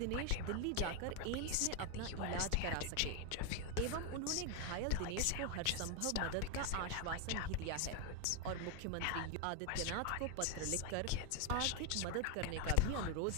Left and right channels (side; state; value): both; different; correlation 0.01